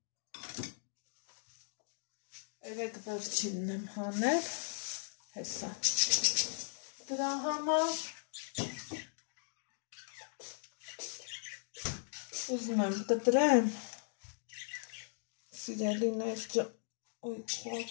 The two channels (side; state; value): right; silent; digital silence